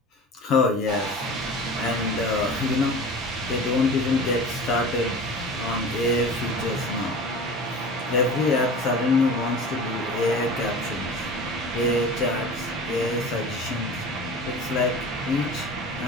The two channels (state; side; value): normal; both; correlation 0.36